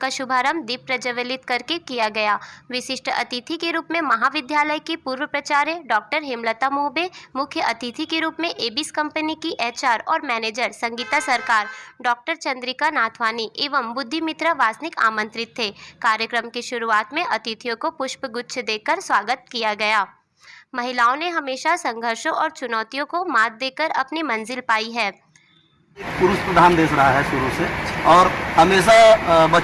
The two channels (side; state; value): both; identical; correlation 1.00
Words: शुभारंभ दीप प्रज्वलित करके किया गया। विशिष्ट अतिथि के रूप में महाविद्यालय की पूर्व प्राचार्य डॉक्टर हेमलता मोहबे, मुख्य अतिथि के रूप में एबिस कंपनी की एचआर और मैनेजर संगीता सरकार, डॉक्टर चंद्रिका नाथवानी एवं बुद्धि मित्रा वासनिक आमंत्रित थे। कार्यक्रम की शुरुआत में अतिथियों को पुष्पगुच्छ देकर स्वागत किया गया। महिलाओं ने हमेशा संघर्षों और चुनौतियों को मात देकर अपनी मंजिल पाई है। पुरुष प्रधान देश रहा है शुरू से, और हमेशा